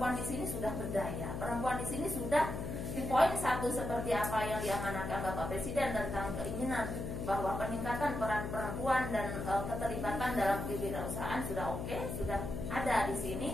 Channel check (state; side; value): noise; left; hum, 4 dB below the sound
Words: di sini sudah berdaya. Perempuan di sini sudah di poin 1 seperti apa yang diamanahkan Bapak Presiden tentang keinginan bahwa peningkatan peran perempuan dan keterlibatan dalam kewirausahaan sudah oke, sudah ada di sini.